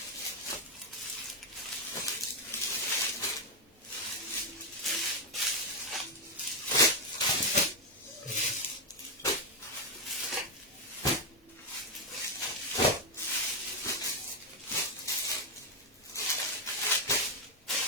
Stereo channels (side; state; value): both; normal; correlation 0.04